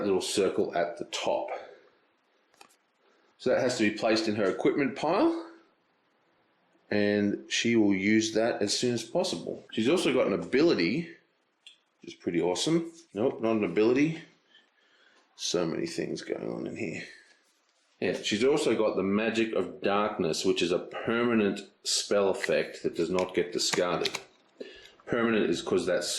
little circle at the top. So that has to be placed in her equipment pile, and she will use that as soon as possible. She's also got an ability, which is pretty awesome. Nope, not an ability. So many things going on in here. Yeah, she's also got the Magic of Darkness, which is a permanent spell effect that does not get discarded. Permanent is because that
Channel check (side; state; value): both; identical; correlation 1.00